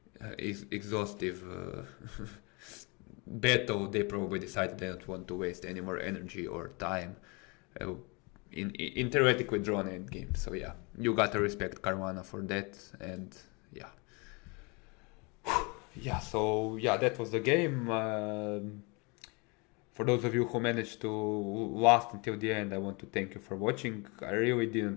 exhaustive battle, they probably decided they don't want to waste any more energy or time in theoretically drawn endgame. So yeah, you gotta respect Caruana for that, and yeah. Yeah, so yeah, that was the game. For those of you who managed to last until the end, I want to thank you for watching. I really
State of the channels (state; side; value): quieter; right; 29.8 dB